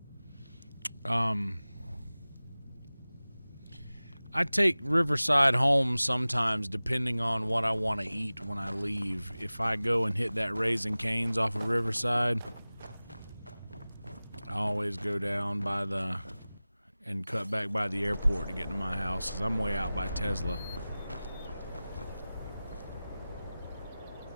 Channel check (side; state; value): both; inverted; correlation -0.98